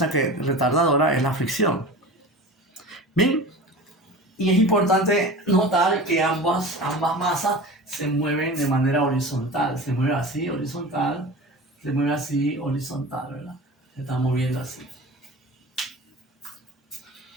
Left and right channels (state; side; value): normal; both; correlation 0.35